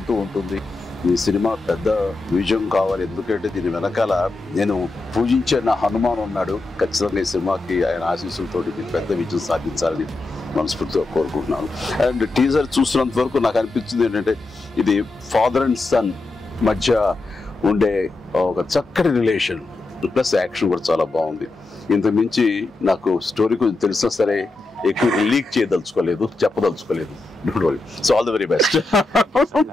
ఉంటుంది. ఈ సినిమా పెద్ద విజయం కావాలి. ఎందుకంటే దీని వెనకాల నేను పూజించే నా హనుమాన్ ఉన్నాడు. ఖచ్చితంగా ఈ సినిమాకి ఆయన ఆశీస్సులతో పెద్ద విజయం సాధించాలని మనస్ఫూర్తిగా కోరుకుంటున్నాను. అండ్ టీజర్ చూసినంత వరకు నాకు అనిపించింది ఏంటంటే ఇది ఫాదర్ అండ్ సన్ మధ్య ఉండే ఒక చక్కటి రిలేషన్, ప్లస్ యాక్షన్ కూడా చాలా బాగుంది. ఇంతకు మించి నాకు స్టోరీ కొంచెం తెలిసినా సరే ఎక్కువ లీక్ చేయదలుచుకోలేదు, చెప్పదలుచుకోలేదు. Don't worry. So all the very best.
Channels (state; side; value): quieter; right; 3.2 dB